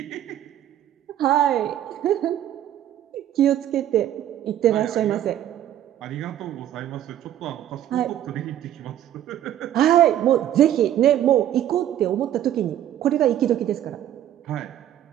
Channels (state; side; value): quieter; left; 11.6 dB